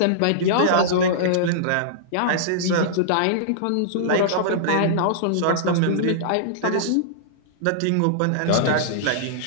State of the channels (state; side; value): different; both; correlation -0.02